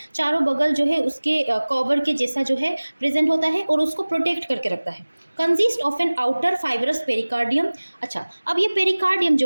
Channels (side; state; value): both; inverted; correlation -1.00